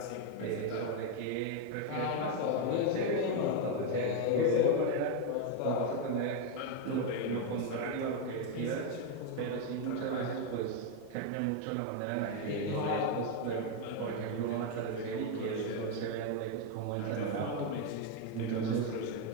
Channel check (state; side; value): different; both; correlation 0.01